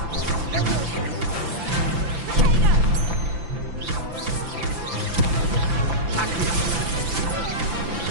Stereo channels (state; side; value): late; left; 5.9 ms